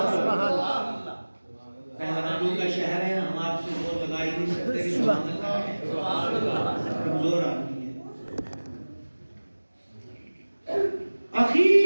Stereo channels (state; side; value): inverted; both; correlation -1.00